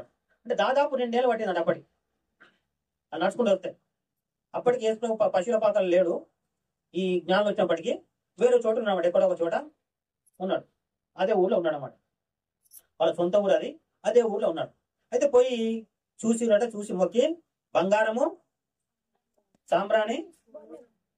అంటే దాదాపు 2 ఏళ్ళు పట్టిందంట అప్పటికి అది నడుచుకుంటూ వస్తే. అప్పటికి యేసు ప్రభు పశువుల పాకలు లేడు. ఈ జ్ఞానం వచ్చినప్పటికీ వేరే చోట ఉన్నాడు, ఎక్కడో ఒక చోట ఉన్నాడు. అదే ఊళ్ళో ఉన్నాడు అన్నమాట. వాళ్ళ సొంత ఊరు అది, అదే ఊళ్ళో ఉన్నాడు. అయితే పోయి చూసి మొక్కి బంగారము, సాంబ్రాణి,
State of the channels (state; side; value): identical; both; correlation 1.00